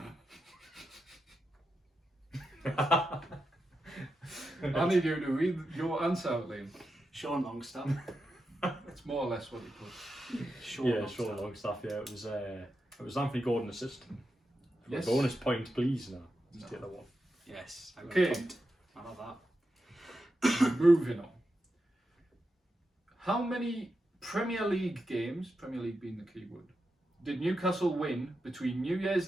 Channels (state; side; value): normal; both; correlation 0.88